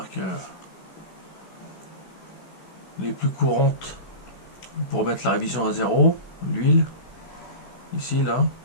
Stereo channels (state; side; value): late; right; 16 ms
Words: les plus courantes pour mettre la révision à zéro, l'huile, ici là.